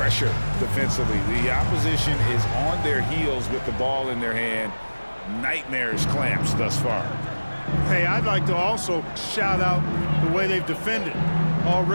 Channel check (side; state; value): both; inverted; correlation -1.00